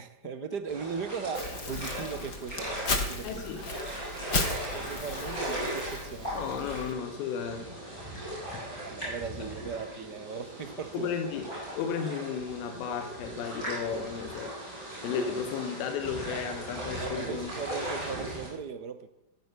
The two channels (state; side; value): late; right; 5.0 ms